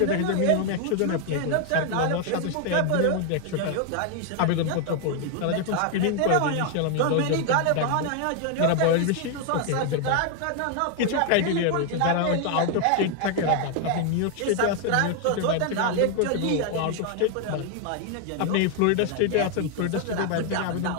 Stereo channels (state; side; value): different; both; correlation 0.00